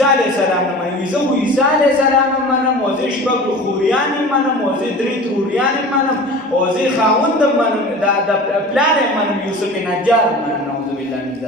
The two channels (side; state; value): both; normal; correlation 0.38